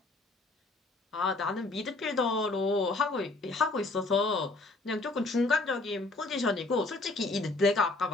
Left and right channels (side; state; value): right; quieter; 3.2 dB